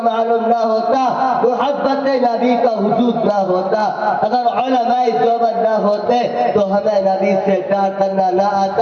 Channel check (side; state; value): both; identical; correlation 1.00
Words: معلوم نہ ہوتا، محبت نبی کا وجود نہ ہوتا، اگر علماء دیوبند نہ ہوتے تو ہمیں نبی سے پیار کرنا نہ